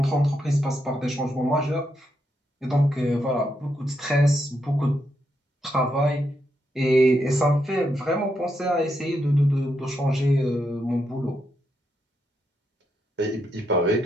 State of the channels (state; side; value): normal; both; correlation 0.81